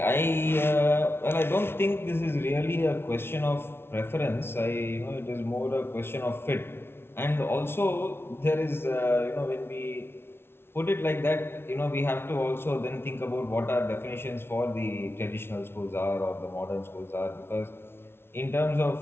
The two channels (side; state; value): right; late; 0.12 ms